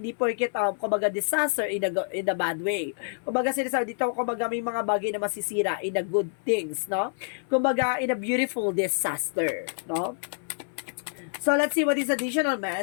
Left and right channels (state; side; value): silent; right; 58 dB below the other